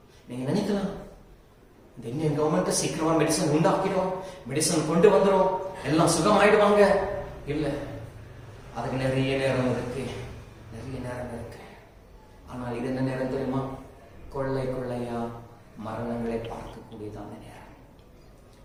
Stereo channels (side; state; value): both; identical; correlation 1.00